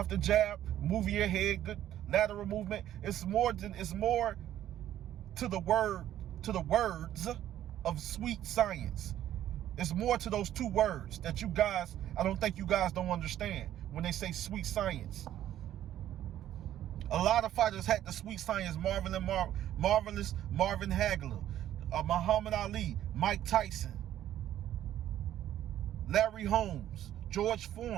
the jab, moving your head, good lateral movement. It's more to the words of sweet science. It's more to those two words that I don't think you guys don't understand when they say sweet science. A lot of fighters had the sweet science. Marvelous Marvin Hagler, Muhammad Ali, Mike Tyson, Larry Holmes, George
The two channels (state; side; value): quieter; left; 12.0 dB